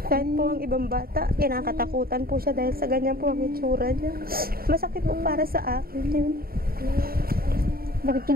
po ang ibang bata, kinakatakutan po siya dahil sa ganyan po ang itsura niya. Masakit po para sa akin yun. Bakit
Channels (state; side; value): late; left; 0.43 ms